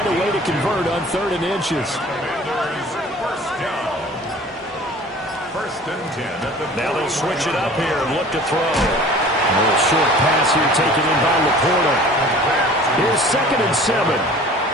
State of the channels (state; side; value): normal; both; correlation 0.45